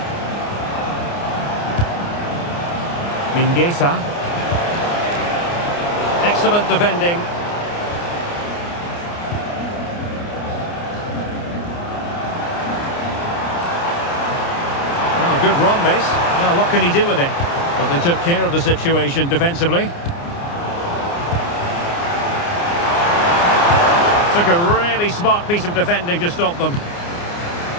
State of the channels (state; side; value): late; right; 29 ms